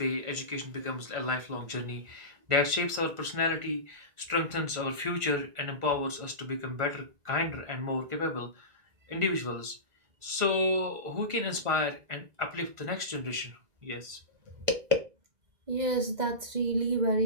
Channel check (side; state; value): left; late; 1.5 ms